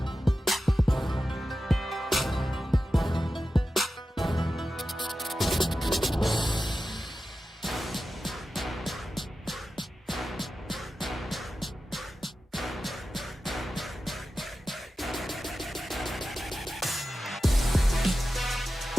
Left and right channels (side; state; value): both; normal; correlation 0.93